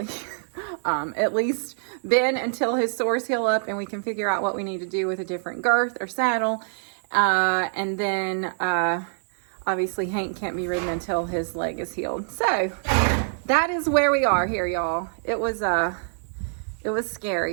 At least Ben, until his sores heal up and we can figure out what we need to do with a different girth or saddle. And then obviously Hank can't be ridden until his leg is healed. So that is where we are here, y'all. It was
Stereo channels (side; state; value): left; silent; digital silence